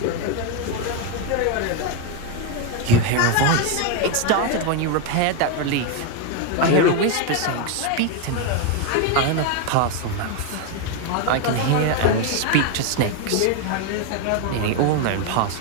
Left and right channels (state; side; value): different; both; correlation 0.02